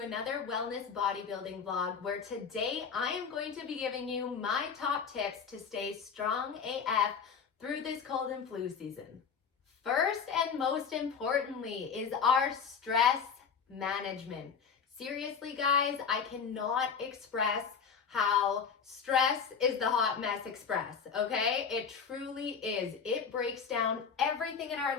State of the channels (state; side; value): quieter; right; 6.3 dB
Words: wellness bodybuilding vlog where today I am going to be giving you my top tips to stay strong AF through this cold and flu season. First and most importantly is our stress management. Seriously, guys, I cannot express how stress is the hot mess express, okay? It truly is. It breaks down everything in our